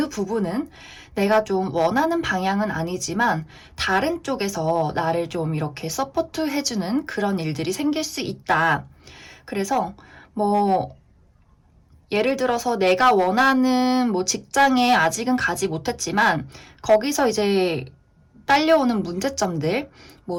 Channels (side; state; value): both; identical; correlation 1.00